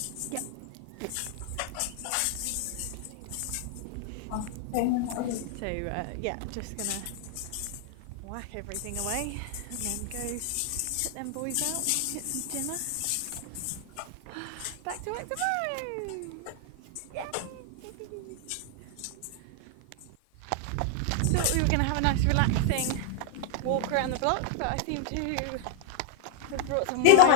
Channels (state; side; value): different; both; correlation 0.00